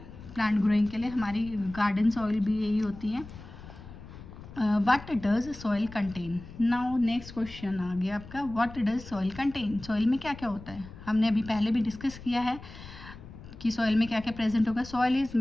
प्लांट ग्रोइंग के लिए. हमारी गार्डन सॉइल भी यही होती है. What does soil contain. Now next question आ गया आपका, what does soil contain. Soil में क्या क्या होता है, हमने अभी पहले भी डिस्कस किया है कि सॉइल में क्या क्या प्रेजेंट होगा. Soil is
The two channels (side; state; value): left; noise; rumble, 16 dB below the sound